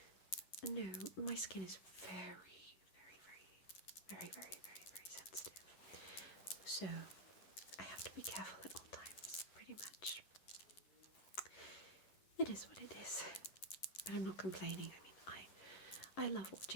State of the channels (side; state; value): right; late; 11 ms